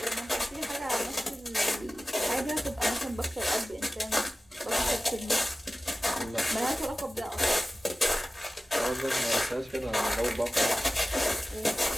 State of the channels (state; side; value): normal; both; correlation 0.96